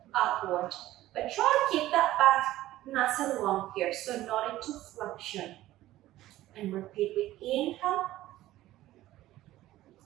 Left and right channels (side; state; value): left; quieter; 15.2 dB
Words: upward. But try to keep that back nice and long here, so not into flexion. And repeat with inhale